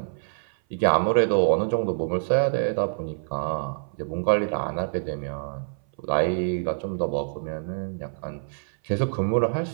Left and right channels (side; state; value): left; silent; 57 dB below the other